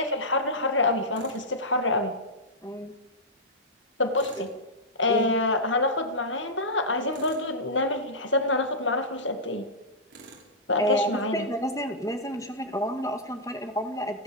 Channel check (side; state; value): both; normal; correlation -0.12